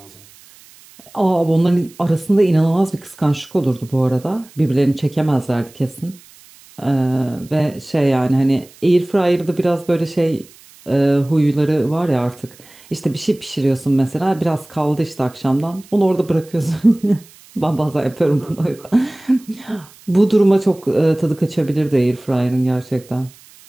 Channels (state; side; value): noise; right; hiss, 25 dB below the sound